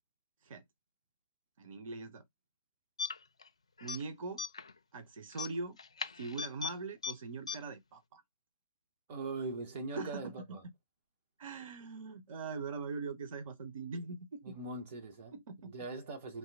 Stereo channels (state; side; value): inverted; both; correlation -0.39